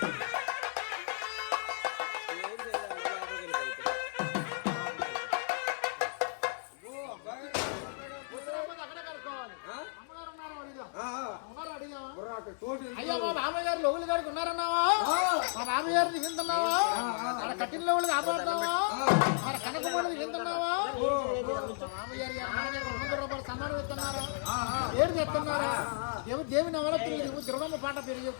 అయ్యా మా మామయ్యగారు లోగులు గారికి ఉన్నారన్నావా మా మామయ్యారు దిగుతున్నావా మన కట్టిన లోగులు కాపాడుతున్నావా మన కనకమూడది దిగుతున్నావా మామయ్యారు 200 రూపాయలు సన్మానం ఇస్తున్నారా పేరు చెప్తున్నారా దేవి నవరాత్రులు దిగు దుర్గమ్మ పాట పేరు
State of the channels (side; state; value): right; silent; digital silence